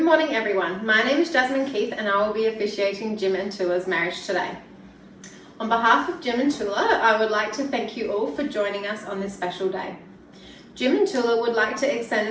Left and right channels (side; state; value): both; identical; correlation 1.00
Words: morning, everyone. My name is Jasmine Keith, and I will be officiating Jim and Toula's marriage today. On behalf of Jim and Toula, I would like to thank you all for joining us on this special day. Jim and Toula would like to extend